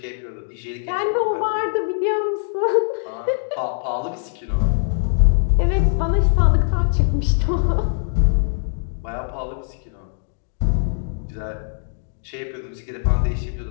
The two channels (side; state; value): right; silent; digital silence